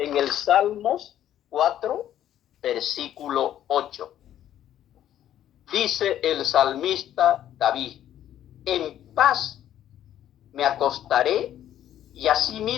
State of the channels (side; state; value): right; quieter; 11.4 dB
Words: el Salmos 4, versículo 8. Dice el salmista David: en paz me acostaré y